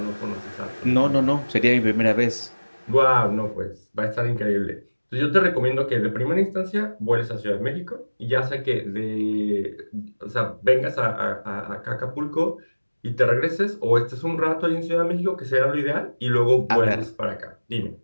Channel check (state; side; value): inverted; both; correlation -1.00